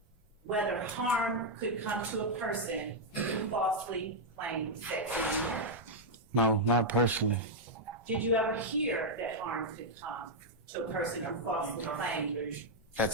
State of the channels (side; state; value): both; normal; correlation -0.02